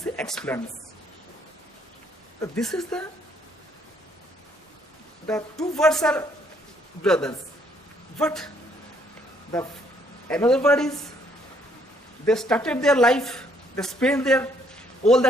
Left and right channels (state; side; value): normal; both; correlation 0.67